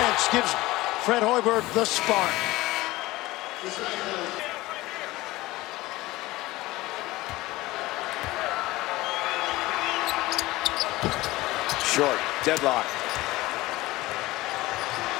gives Fred Hoiberg the spark. Short, deadlock.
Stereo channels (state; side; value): quieter; right; 19.0 dB